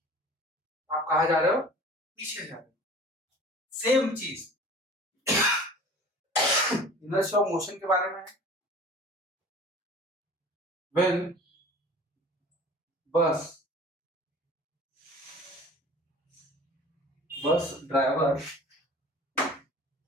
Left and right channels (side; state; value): both; normal; correlation 0.44